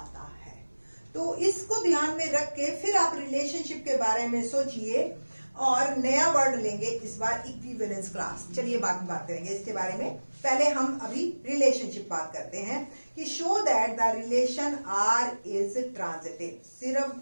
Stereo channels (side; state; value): both; inverted; correlation -1.00